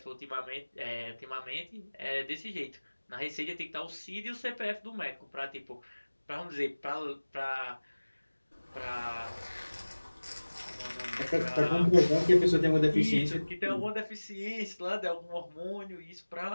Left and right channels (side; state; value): both; inverted; correlation -1.00